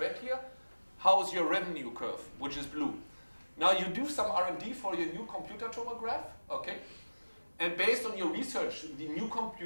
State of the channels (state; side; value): inverted; both; correlation -1.00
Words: here? How is your revenue curve, which is blue? Now you do some R&D for your new computer tomograph, okay? And based on your research, the new